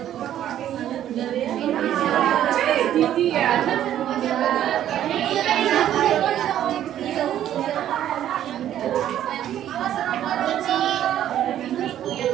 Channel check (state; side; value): quieter; left; 11.4 dB